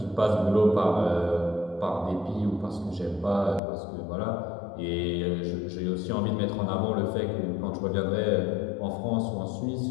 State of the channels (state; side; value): drops out; right; at 3.6 s